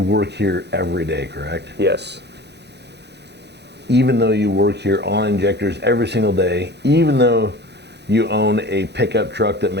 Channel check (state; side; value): late; left; 0.49 ms